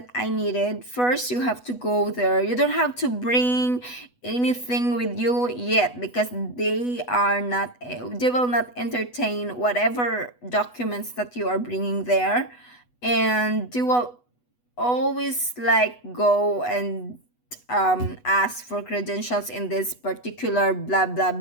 I needed. First, you have to go there. You don't have to bring anything with you yet, because they will not entertain whatever documents that you are bringing there, and they will always like go and ask for credentials in this particular blah blah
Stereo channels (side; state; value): right; late; 8.1 ms